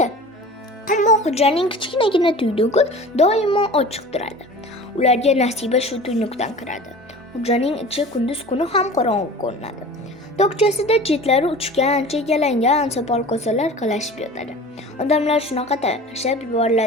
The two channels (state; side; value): normal; both; correlation 0.39